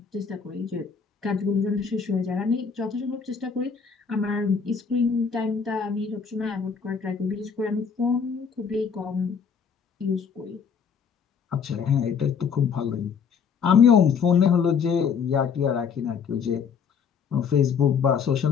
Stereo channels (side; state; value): right; quieter; 6.4 dB